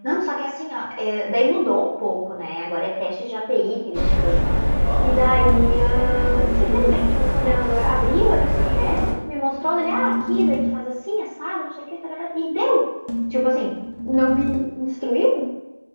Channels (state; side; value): inverted; both; correlation -1.00